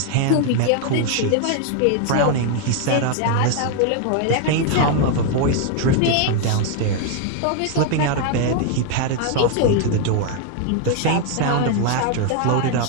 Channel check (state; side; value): different; both; correlation 0.00